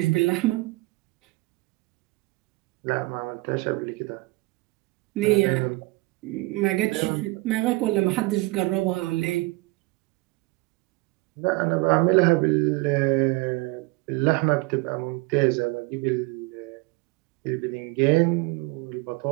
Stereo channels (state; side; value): quieter; left; 23.1 dB